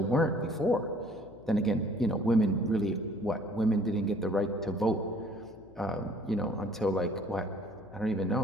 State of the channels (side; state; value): left; noise; hum, 22 dB below the sound